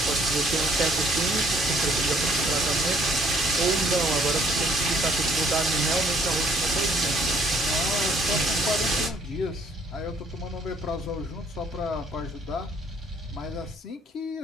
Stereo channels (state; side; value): normal; both; correlation 0.63